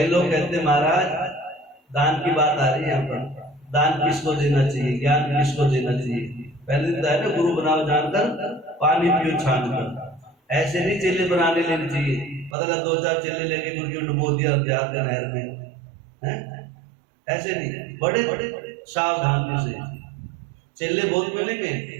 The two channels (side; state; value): left; drops out; at 12.6 s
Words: लोग कहते महाराज दान की बात आ रही है यहाँ पर, दान किसको देना चाहिए, ज्ञान किसको देना चाहिए? पहले दिन है ना गुरु बनाओ जानकर पानी पियो छान कर, ऐसे नहीं चेले बनाने लेने चाहिए। पता लगा 2-4 चेले लेके गुरु डुबो दिया जाकर नहर में, हैं? ऐसे नहीं, बड़े बड़े सावधानी से चेले बहुत मिलेंगे